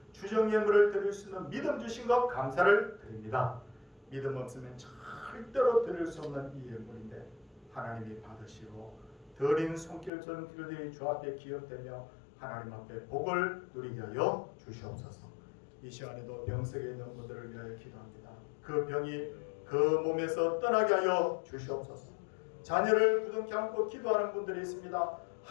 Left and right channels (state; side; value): drops out; right; at 10.1 s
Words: 주정의 물을 드릴 수 있는 믿음 주신 것 감사를 드립니다. 믿음 없으면 절대로 드릴 수 없는 이 예물인데 하나님이 받으시고 드린 손길처럼 길들이 주 앞에 기억되며 하나님 앞에 복을 누리게 하여 주시옵소서. 이 시간에도 병석에 있는 분들을 위하여 기도합니다. 그 병이 그 몸에서 떠나게 하여 주시옵소서. 자녀를 부둥켜 안고 기도하는 분들이 있습니다.